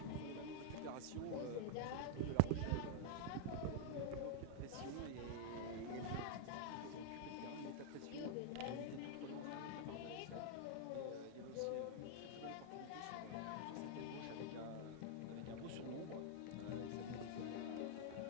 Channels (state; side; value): different; both; correlation 0.00